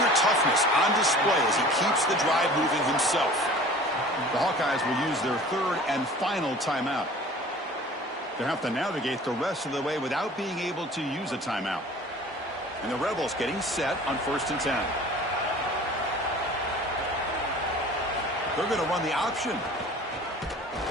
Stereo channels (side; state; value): both; normal; correlation 0.44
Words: toughness on display as he keeps the drive moving himself. The Hawkeyes will use their 3rd and final timeout. They'll have to navigate the rest of the way without being able to use a timeout. And the Rebels getting set on 1st and 10. They're going to run the option.